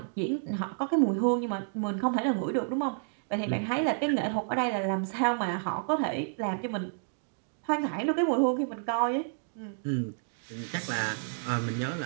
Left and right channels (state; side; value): silent; left; digital silence